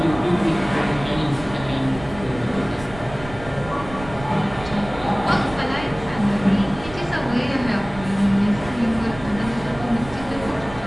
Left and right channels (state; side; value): noise; right; rumble, 14 dB below the sound